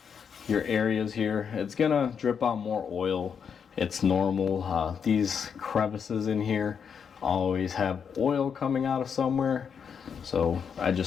your areas here. It's gonna drip out more oil. It's normal. These crevices in here always have oil coming out of somewhere. So I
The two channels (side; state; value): right; quieter; 6.9 dB